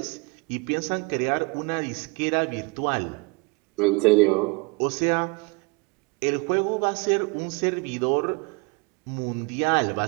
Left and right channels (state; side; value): quieter; left; 27.8 dB